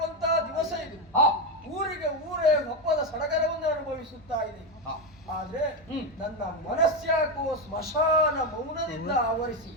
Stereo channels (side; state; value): both; normal; correlation 0.10